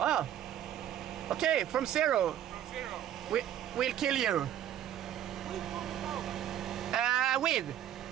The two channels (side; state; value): left; quieter; 10.9 dB